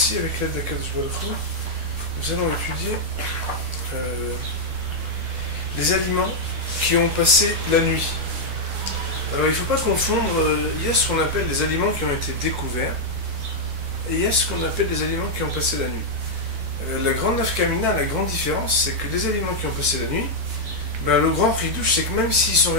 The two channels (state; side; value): late; left; 12 ms